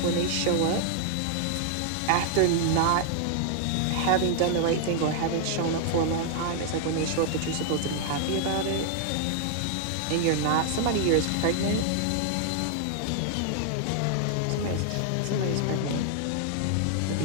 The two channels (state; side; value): different; both; correlation 0.00